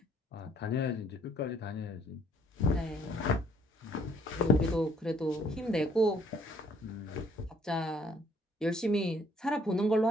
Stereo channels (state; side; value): normal; both; correlation 0.63